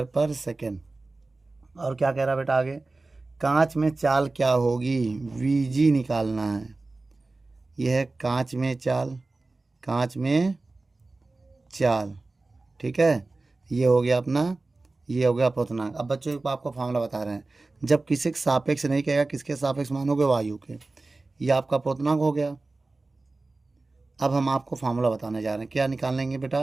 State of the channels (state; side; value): quieter; left; 3.3 dB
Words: पर सेकेंड। और क्या कह रहा है बेटा आगे, कांच में चाल क्या होगी, VG निकालना है। यह है कांच में चाल, कांच में चाल। ठीक है, ये हो गया अपना, ये हो गया अपवर्तनांक। अब बच्चों को आपको फार्मूला बता रहे हैं, जब किसी के सापेक्ष नहीं कहेगा, किसके सापेक्ष मानोगे, वायु के, ये आपका अपवर्तनांक हो गया। अब हम आपको फार्मूला बताने जा रहे हैं, क्या निकालेंगे बेटा।